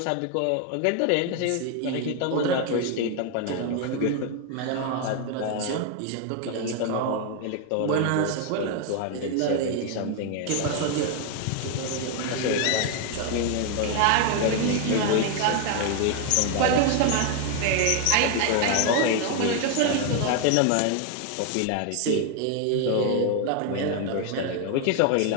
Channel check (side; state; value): both; different; correlation 0.01